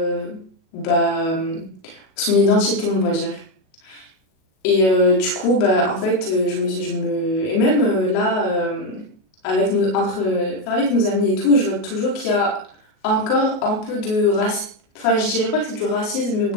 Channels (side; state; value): right; late; 38 ms